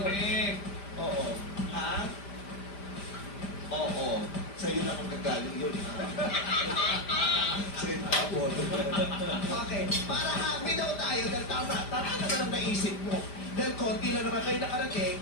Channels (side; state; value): right; late; 5.0 ms